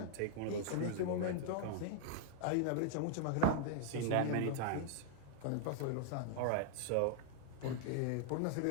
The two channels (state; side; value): different; both; correlation 0.00